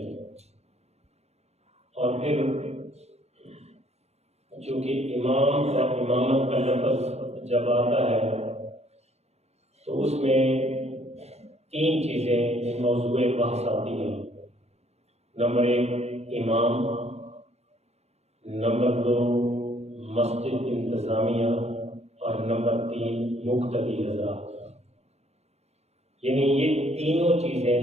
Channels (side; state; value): left; late; 0.31 ms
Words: اور پھر چونکہ امام اور امامت کا لفظ جب آتا ہے تو اس میں 3 چیزیں موضوع بحث آتی ہیں۔ نمبر 1 امام، نمبر 2 مسجد انتظامیہ، اور نمبر 3 مقتدی حضرات۔ یعنی یہ تینوں چیزیں